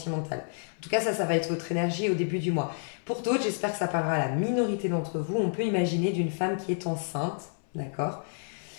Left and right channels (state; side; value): silent; right; 58 dB below the other